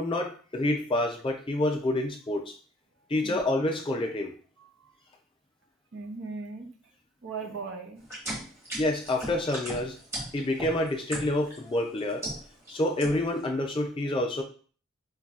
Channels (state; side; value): normal; both; correlation 0.60